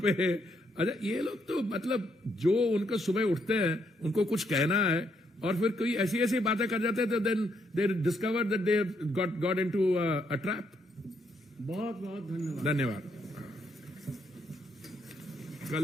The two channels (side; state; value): both; normal; correlation 0.75